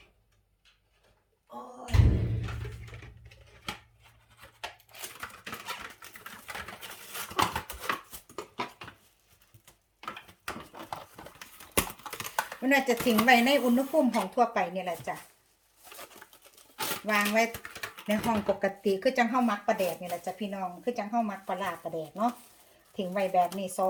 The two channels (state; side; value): identical; both; correlation 1.00